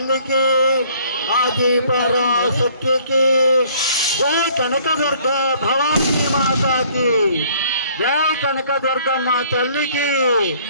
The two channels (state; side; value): inverted; both; correlation -0.58